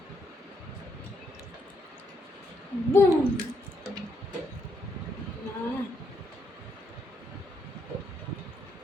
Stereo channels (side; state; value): both; normal; correlation 0.75